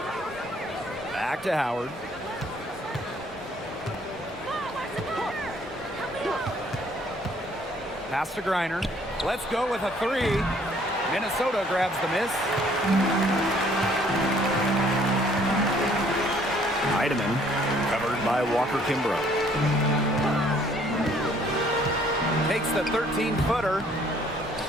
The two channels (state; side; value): normal; both; correlation 0.61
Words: Back to Howard. Pass to Griner. Let's go with a 3. Minnesota grabs the miss. Heidemann covered by Walker Kimbrough. Takes the 13-footer.